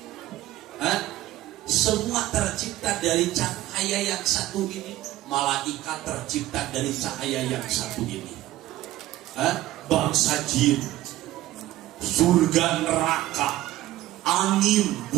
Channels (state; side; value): quieter; left; 15.5 dB